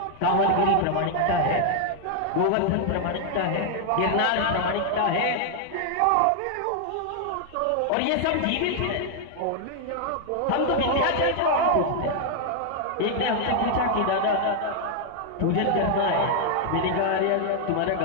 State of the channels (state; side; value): different; both; correlation 0.00